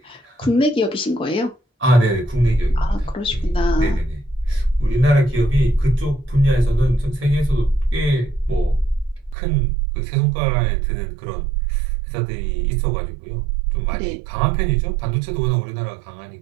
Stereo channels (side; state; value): left; drops out; at 9.3 s